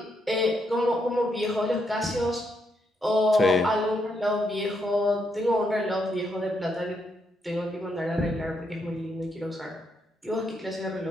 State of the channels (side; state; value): both; normal; correlation 0.78